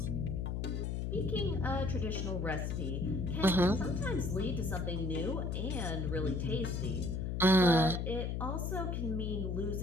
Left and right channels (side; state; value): left; noise; hum, 1 dB below the sound